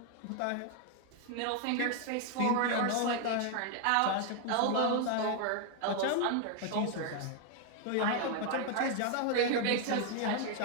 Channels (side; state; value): both; different; correlation 0.00